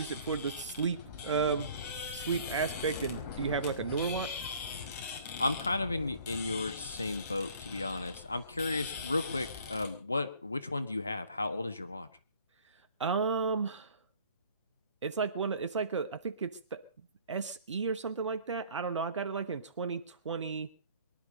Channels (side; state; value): both; inverted; correlation -0.54